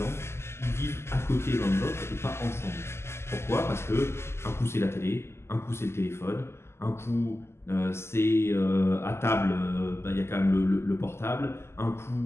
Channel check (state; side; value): late; right; 0.12 ms